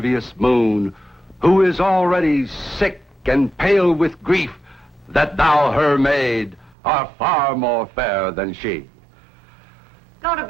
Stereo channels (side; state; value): left; drops out; at 6.8 s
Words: moon, who is already sick and pale with grief that thou, her maid, art far more fair than she. Go to